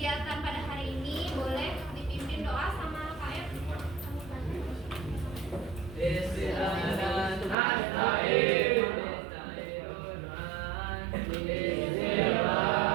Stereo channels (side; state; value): left; drops out; at 7.6 s